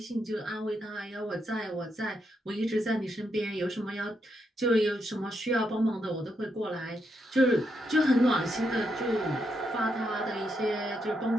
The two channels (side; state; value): both; normal; correlation 0.81